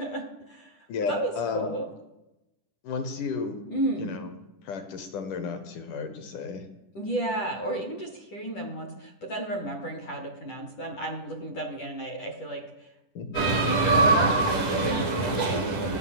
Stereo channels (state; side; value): late; right; 10 ms